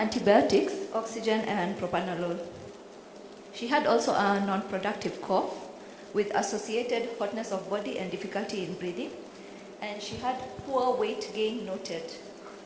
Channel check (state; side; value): identical; both; correlation 1.00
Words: oxygen, and propranolol. She had also a non-productive cough with associated hotness of body and difficulty in breathing, and she had poor weight gain noted.